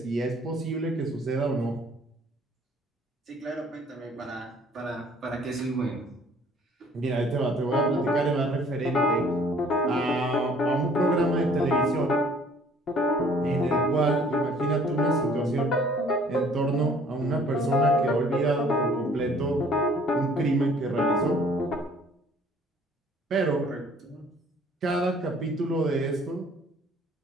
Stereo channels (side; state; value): both; normal; correlation 0.56